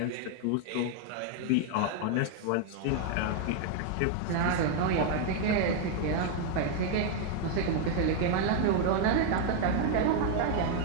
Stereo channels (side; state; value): both; different; correlation 0.00